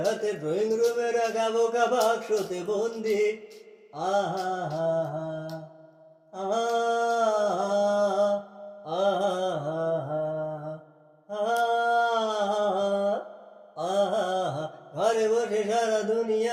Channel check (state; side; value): identical; both; correlation 1.00